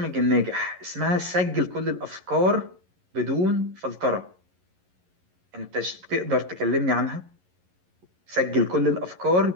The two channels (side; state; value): left; late; 11 ms